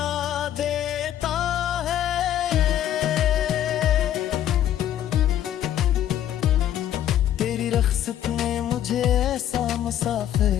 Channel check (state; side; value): quieter; right; 11.2 dB